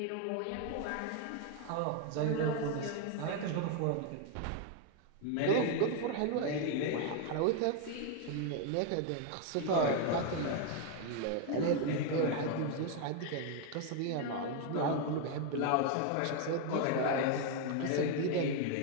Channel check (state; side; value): different; both; correlation 0.01